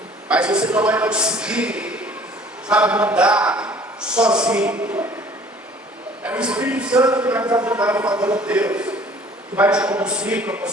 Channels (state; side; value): normal; both; correlation 0.52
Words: mas você não vai conseguir, sabe, mudar sozinho. É o Espírito Santo que vai te ajudar a favor de Deus, que vai te conduzir para